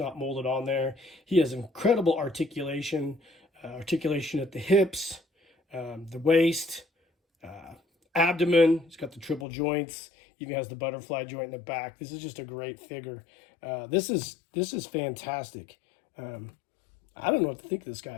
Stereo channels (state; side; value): drops out; right; at 9.5 s